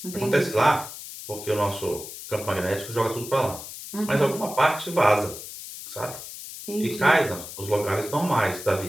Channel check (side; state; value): left; noise; hiss, 11 dB below the sound